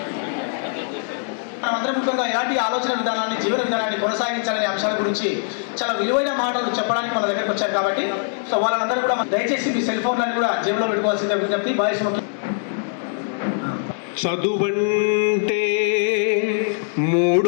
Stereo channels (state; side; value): silent; right; digital silence